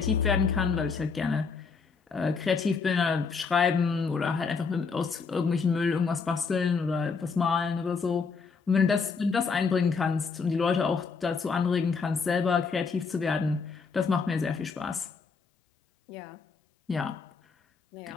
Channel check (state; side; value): quieter; right; 5.1 dB